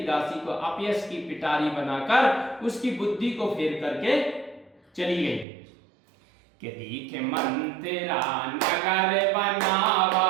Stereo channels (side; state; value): left; drops out; at 5.5 s